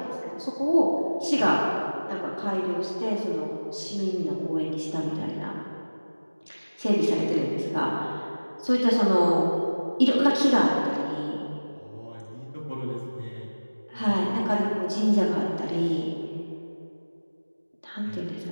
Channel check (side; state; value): both; inverted; correlation -1.00